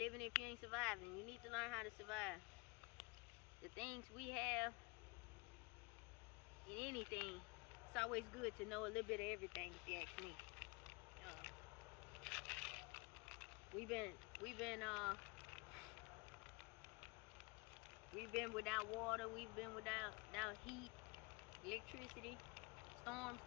if you ain't surviving. You need to learn how to survive. The things we have in anything, it's always good to know a little bit of everything, if you ask me. We've been without water, we've been without heat, electricity, storms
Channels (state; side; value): quieter; right; 27.6 dB